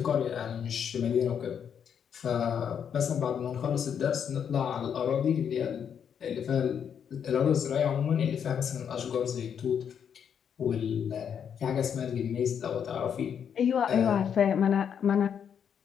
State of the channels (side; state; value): right; quieter; 7.9 dB